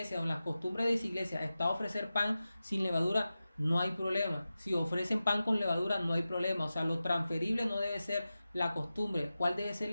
o en las costumbres de su iglesia está ofrecer pan sin levadura, no hay problema. Si ofrecen pan con levadura, no hay problema. O sea, lo transferible no debe ser la costumbre. ¿Cuál debe ser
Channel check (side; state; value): both; inverted; correlation -0.94